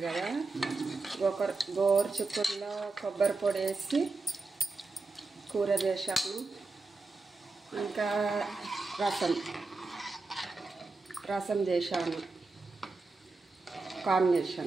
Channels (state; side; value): quieter; left; 3.7 dB